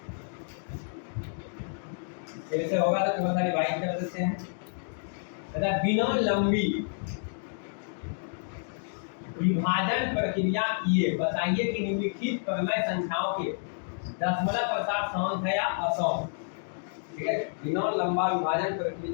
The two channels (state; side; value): silent; right; digital silence